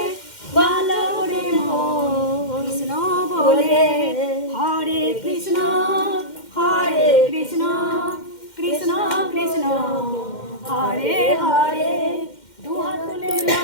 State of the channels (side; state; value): right; late; 2.1 ms